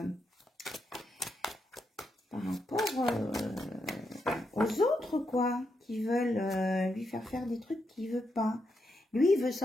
aux autres, quoi, qui veulent lui faire des trucs qu'il veut pas. Lui, il veut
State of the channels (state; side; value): normal; both; correlation 0.82